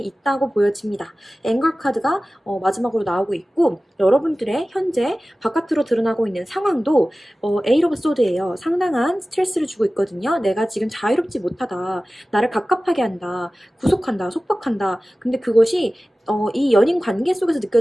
보여집니다. 앵글 카드가 마지막으로 나오고 있고, 여러분들의 현재 바깥으로 드러나고 있는 상황도 에이트 오브 소드예요. 상당한 스트레스를 주고 있거든요. 내가 지금 자유롭지 못하다. 나를 갑갑하게 한다. 구속한다. 속박한다. 근데 그것이 이 연인 관계 속에서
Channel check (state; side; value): normal; both; correlation 0.96